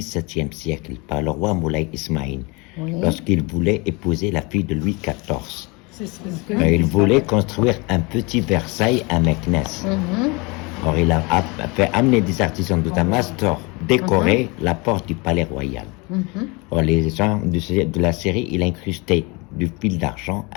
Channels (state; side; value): quieter; right; 27.5 dB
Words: siècle par le roi Moulay Ismaïl, Oui. lorsqu'il voulait épouser la fille de Louis XIV. C'est ce que Il voulait construire un petit Versailles à Meknès. Or, il a fait amener des artisans de Damas pour décorer la porte du palais royal. Or, les gens de la série, il a incrusté du fil d'argent